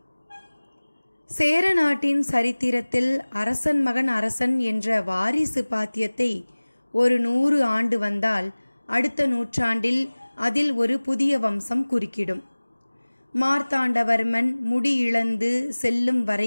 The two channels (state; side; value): inverted; both; correlation -1.00